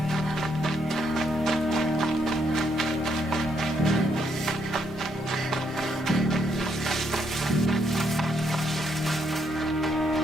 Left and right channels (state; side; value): normal; both; correlation 0.75